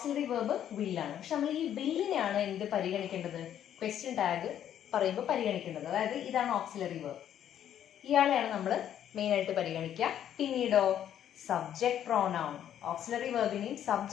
വേർബ് വില്ലാണ്. പക്ഷെ നമ്മൾ ഈ വില്ലിനെയാണ് എന്ത് പരിഗണിക്കേണ്ടത്? ക്വസ്റ്റ്യൻ ടാഗ് പറയുമ്പോൾ പരിഗണിക്കേണ്ടത്. അതായത് ഇതാണ് ഓക്സിലറി വേർബ്, ഇയാളെയാണ് നമ്മൾ മെയിൻ ആയിട്ട് പരിഗണിക്കുക. പിന്നീടോ സബ്ജക്ട് പ്രോനൗൺ. ഓക്സിലറി വേർബിനെയും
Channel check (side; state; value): right; quieter; 10.3 dB